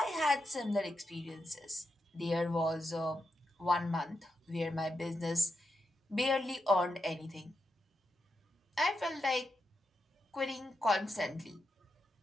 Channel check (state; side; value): normal; both; correlation 0.85